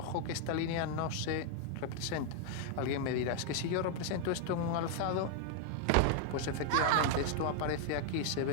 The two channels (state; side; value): different; both; correlation 0.00